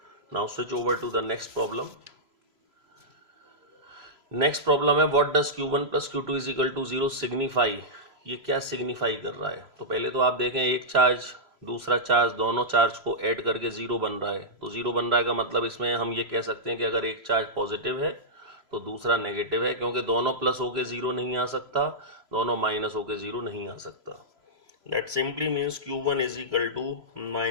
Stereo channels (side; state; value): left; late; 3.0 ms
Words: Now switch over to the next problem. Next problem है what does Q1 plus Q2 is equal to 0 signify. ये क्या सिग्निफाई कर रहा है? तो पहले तो आप देखें एक चार्ज दूसरा चार्ज, दोनों चार्ज को ऐड करके 0 बन रहा है। तो 0 बन रहा है का मतलब इसमें हम ये कह सकते हैं कि अगर एक चार्ज पॉजिटिव है तो दूसरा नेगेटिव है, क्योंकि दोनों प्लस होके 0 नहीं आ सकता, दोनों माइनस होके 0 नहीं आ सकता। That simply means Q1 is equal to